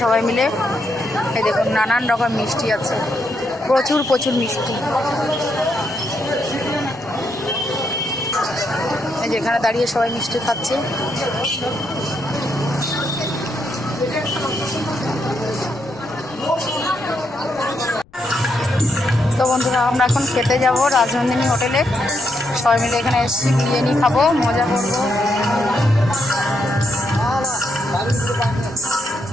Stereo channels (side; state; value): left; noise; rumble, 28 dB below the sound